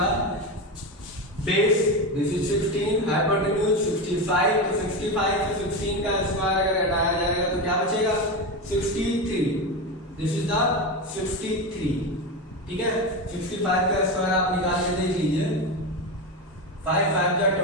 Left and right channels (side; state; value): both; normal; correlation 0.17